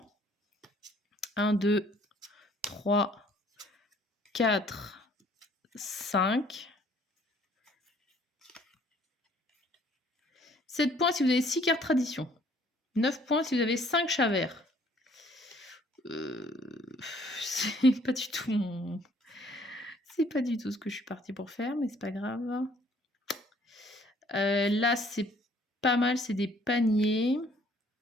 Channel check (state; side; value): normal; both; correlation 0.60